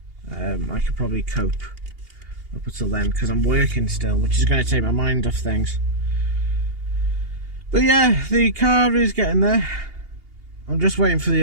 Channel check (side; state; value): left; late; 2.8 ms